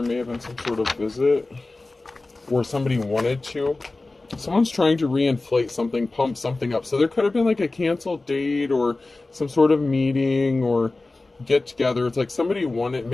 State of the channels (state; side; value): quieter; right; 3.2 dB